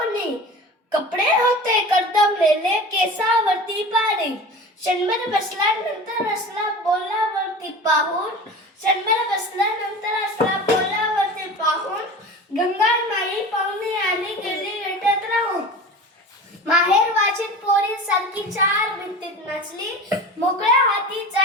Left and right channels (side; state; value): both; normal; correlation 0.35